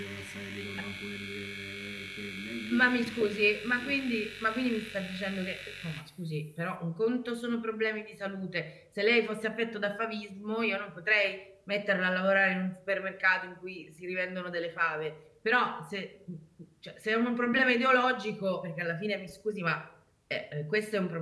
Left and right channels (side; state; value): both; identical; correlation 1.00